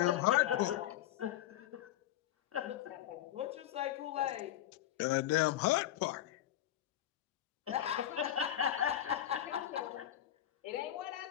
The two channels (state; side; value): quieter; right; 12.5 dB